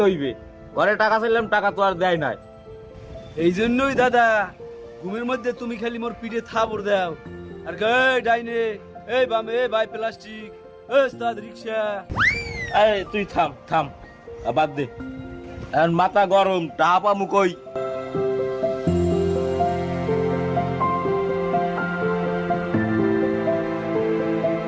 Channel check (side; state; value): both; identical; correlation 1.00